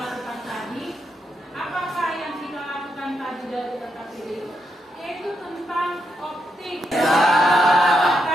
tadi? Apakah yang kita lakukan tadi dari LKPD? Yaitu tentang optik.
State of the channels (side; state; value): both; normal; correlation 0.82